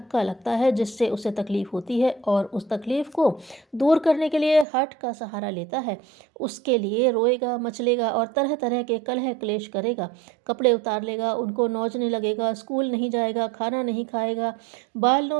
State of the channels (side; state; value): left; drops out; at 4.7 s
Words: लगता है, जिससे उसे तकलीफ होती है, और उस तकलीफ को दूर करने के लिए हठ का सहारा लेता है। उसके लिए रोएगा, मचलेगा और तरह तरह के कलह क्लेश करेगा। कपड़े उतार लेगा, उनको नोचने लगेगा, स्कूल नहीं जाएगा, खाना नहीं खाएगा, बाल